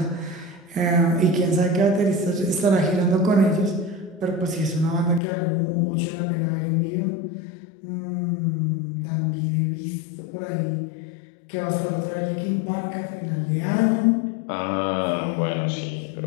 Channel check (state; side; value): drops out; right; at 5.2 s